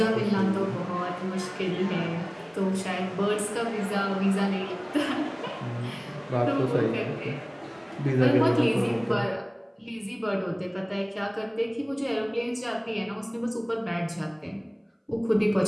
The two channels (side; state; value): both; identical; correlation 1.00